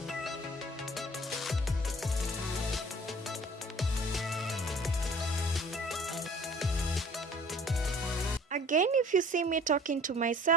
Again, if you see me talking to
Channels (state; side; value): normal; both; correlation 0.50